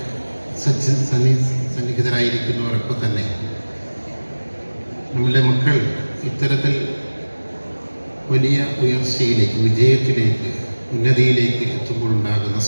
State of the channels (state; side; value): inverted; both; correlation -1.00